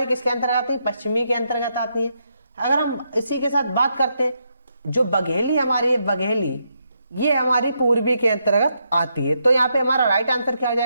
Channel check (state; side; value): inverted; both; correlation -0.80